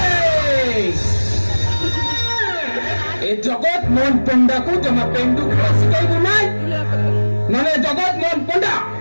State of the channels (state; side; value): inverted; both; correlation -1.00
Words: ଏ ଜଗତ ମୋହନ ପଣ୍ଡାକୁ ଜମା ପେଣ୍ଡୁ ଖେଳ ଶିଖାଇବୁ ନାହିଁ ନହେଲେ ଜଗତ ମୋହନ ପଣ୍ଡା